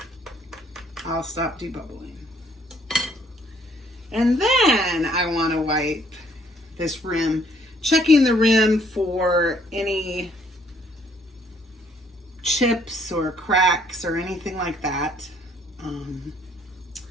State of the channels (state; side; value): normal; both; correlation 0.64